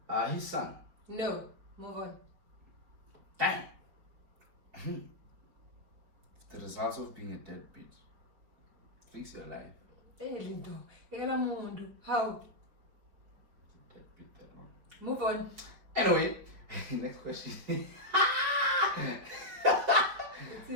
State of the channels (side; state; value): left; late; 4.9 ms